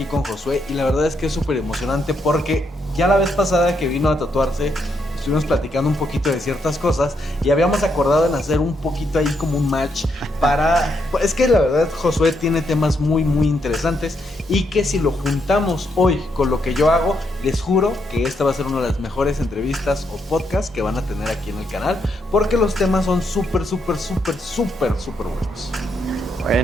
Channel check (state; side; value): normal; both; correlation 0.78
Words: con Josué y la verdad es que es súper emocionante porque ya la vez pasada que vino a tatuarse estuvimos platicando un poquito de ciertas cosas y habíamos acordado en hacer un poquito ahí como un match para... Es que la verdad Josué tiene temas muy muy interesantes y que si lo juntamos hoy con lo que yo hago, les juro que esta va a ser una de las mejores entrevistas o podcasts que van a tener aquí en el canal, porque los temas son súper buenos.